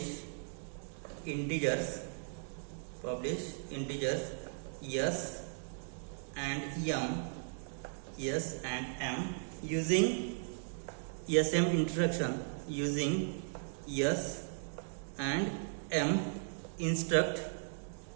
integers S and M using SM instruction, using S and M instruct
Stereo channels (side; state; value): left; silent; digital silence